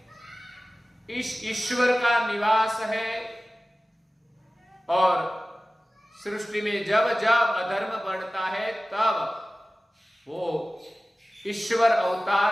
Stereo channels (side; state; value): both; normal; correlation 0.97